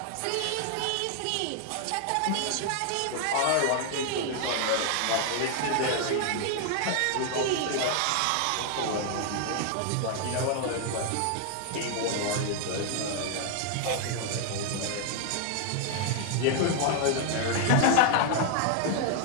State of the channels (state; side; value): different; both; correlation 0.00